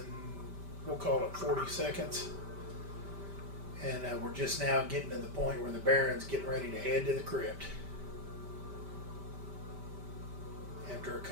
we'll call it 40 seconds. And we're just now getting to the point where the Baron's getting ready to head to the crypt. After a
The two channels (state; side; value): late; left; 5.1 ms